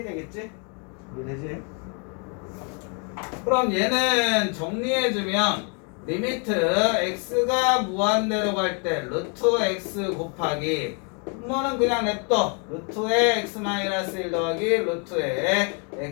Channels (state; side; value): quieter; right; 37.2 dB